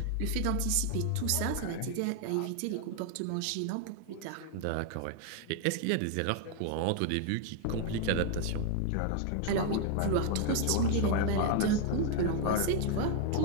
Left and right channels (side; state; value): both; different; correlation 0.00